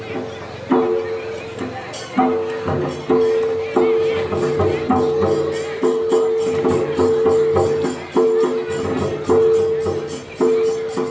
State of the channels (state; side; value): identical; both; correlation 1.00